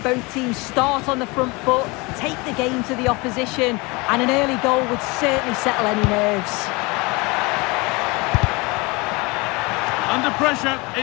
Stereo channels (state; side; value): quieter; right; 25.8 dB